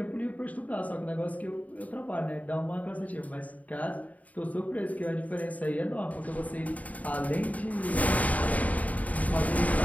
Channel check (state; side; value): late; right; 0.071 ms